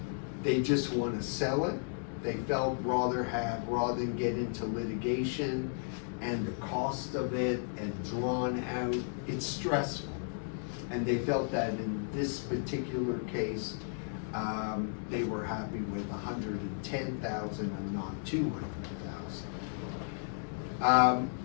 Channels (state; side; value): silent; right; digital silence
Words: They just want to sell it. They felt rather than get into litigation and the cost of it and drawn out, it's stressful. And they felt that in this particular case, they were happy with $110,000 and not $200,000.